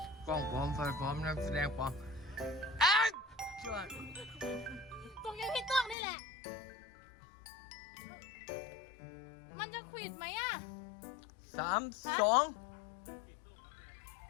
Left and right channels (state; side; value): drops out; right; at 6.0 s